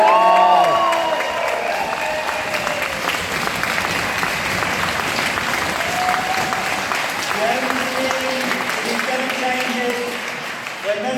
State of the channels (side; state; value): both; identical; correlation 1.00